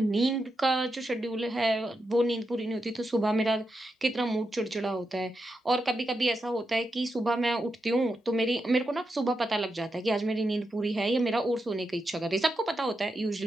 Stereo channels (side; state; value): both; normal; correlation 0.86